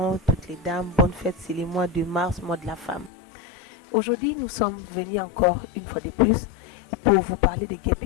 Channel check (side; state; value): right; drops out; at 3.1 s